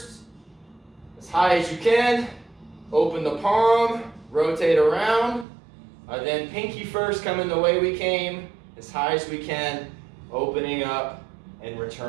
as high as you can. Open the palm, rotate around. Then pinky first, coming the way we came, as high as we can, opening up and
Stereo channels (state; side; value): drops out; left; at 5.5 s